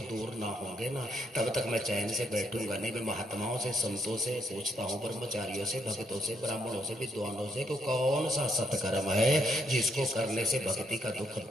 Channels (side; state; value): both; normal; correlation 0.74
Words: दूर ना होंगे ना तब तक मैं चैन से बैठूंगा नहीं। मैं महात्माओं से, संतों से पूछता हूँ, ब्रह्मचारियों से, भक्तों से, ब्राह्मणों से, विद्वानों से, कि कौन सा सत्कर्म है जिसको करने से भक्ति का दुख